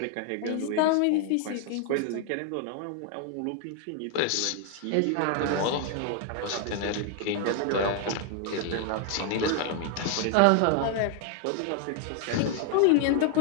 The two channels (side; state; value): both; different; correlation 0.00